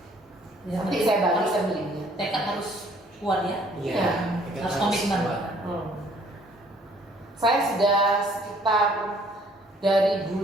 Ya, Nanti saya bagikan linknya. tekad harus kuat ya. Iya. Harus komitmen. Saya sudah sekitar dari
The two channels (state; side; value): normal; both; correlation 0.60